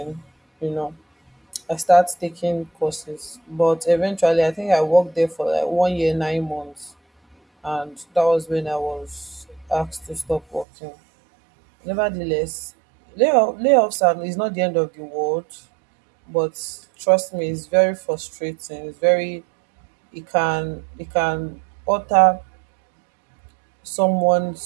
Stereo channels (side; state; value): left; drops out; at 10.7 s